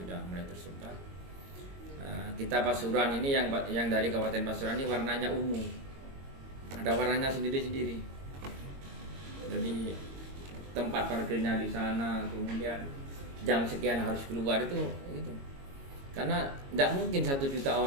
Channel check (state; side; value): late; left; 22 ms